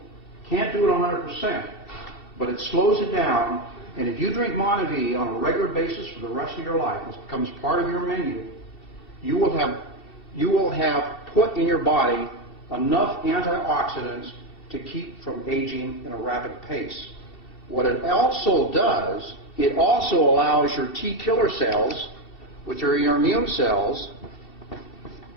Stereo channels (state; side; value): late; right; 2.7 ms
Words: Can't do it 100%, but it slows it down. And if you drink Monavie on a regular basis for the rest of your life, it becomes part of your menu, you will have put in your body enough antioxidants to keep from aging in a rapid pace. What it also does, it also allows your T killer cells, which are your immune cells,